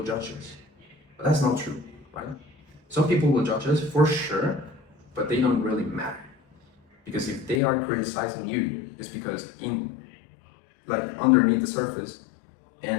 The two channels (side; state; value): right; drops out; at 7.6 s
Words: judge us. But that's not true, right? Some people will judge us for sure, but they don't really matter. Because if they are criticizing you, it's because underneath the surface